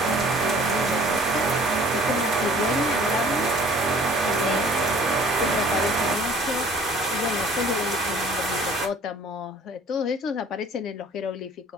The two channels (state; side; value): normal; both; correlation 0.52